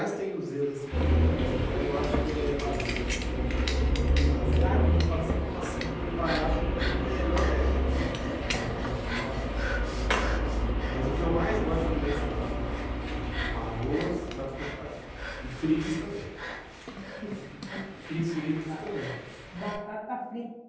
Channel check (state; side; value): identical; both; correlation 1.00